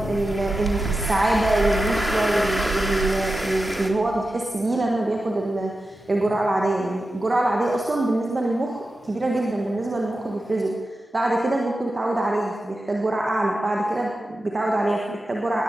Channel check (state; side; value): normal; both; correlation 0.92